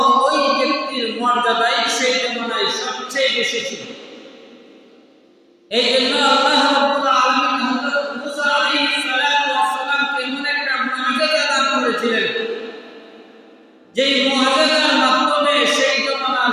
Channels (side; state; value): both; identical; correlation 1.00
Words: ওই ব্যক্তির মর্যাদাই সেই জমানায় সবচেয়ে বেশি ছিল। এই জন্য আল্লাহ রাব্বুল আলামিন হযরত মুসা আলাইহিস সালামকে এমন একটা মুআজিজা দান করেছিলেন, যেই মুআজিজার মাধ্যমে সেই জমানার